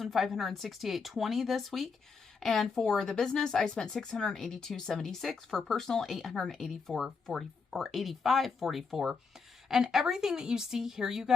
this week. And for the business, I spent $682.76. For personal, $884.40 or $85.44. And everything that you see here, you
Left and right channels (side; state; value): right; quieter; 5.1 dB